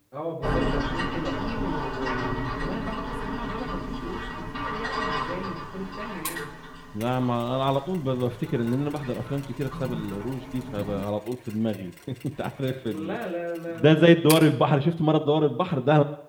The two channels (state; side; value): identical; both; correlation 1.00